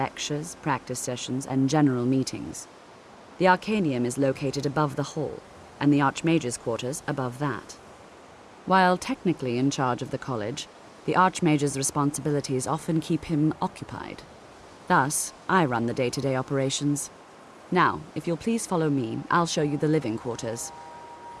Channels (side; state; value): both; identical; correlation 1.00